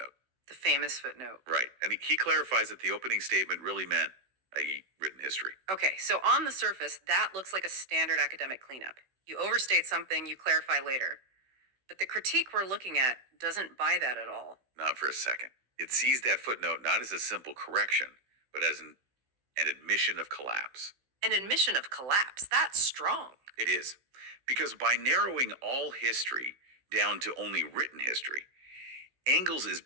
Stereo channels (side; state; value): left; late; 16 ms